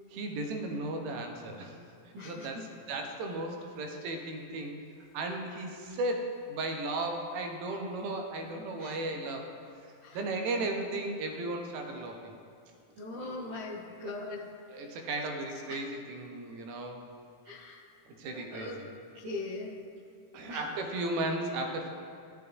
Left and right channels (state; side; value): late; left; 18 ms